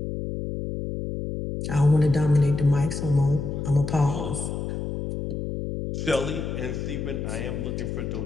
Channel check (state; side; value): noise; left; hum, 4 dB below the sound